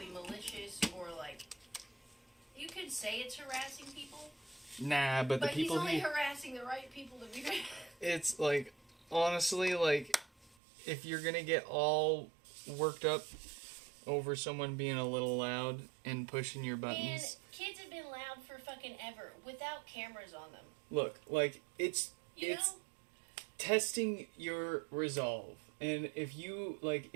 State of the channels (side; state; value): left; drops out; at 10.6 s